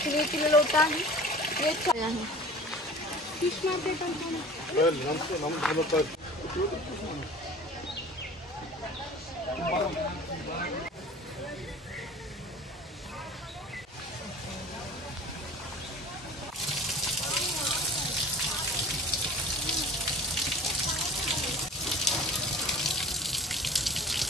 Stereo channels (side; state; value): both; normal; correlation 0.43